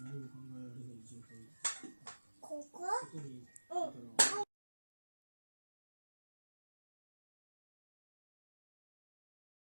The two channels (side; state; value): both; inverted; correlation -1.00